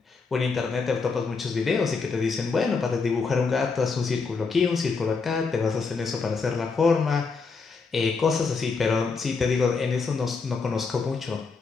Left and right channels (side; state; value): right; quieter; 4.7 dB